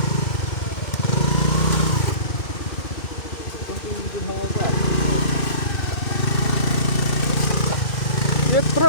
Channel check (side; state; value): right; late; 2.2 ms